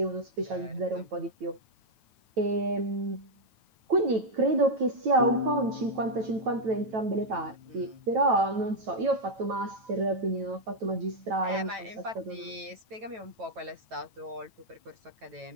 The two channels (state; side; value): late; left; 9.1 ms